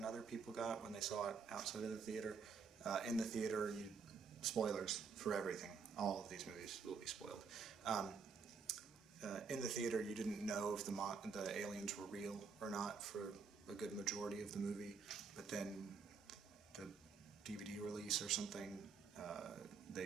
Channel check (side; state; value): left; quieter; 5.3 dB